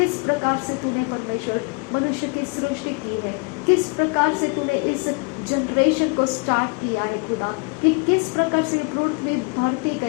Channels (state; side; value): quieter; right; 33.7 dB